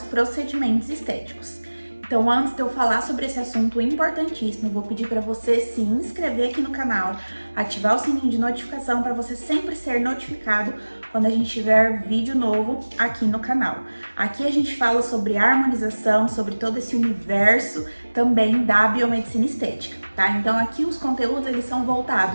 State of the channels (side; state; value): both; inverted; correlation -1.00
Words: procedimentos estéticos. Então, antes de eu falar sobre esse assunto importantíssimo, eu vou pedir para você se inscrever aqui no canal, ativar o sininho de notificação para você sempre ser notificado quando a gente tiver vídeo novo aqui no canal. Aqui a gente fala sobre harmonização, sobre todo esse universo também da biomedicina estética, tá? Então aqui os conteúdos eles são